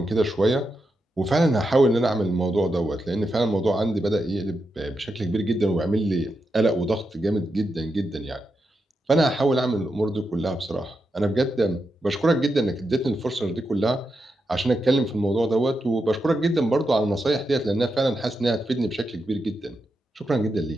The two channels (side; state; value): both; normal; correlation 0.86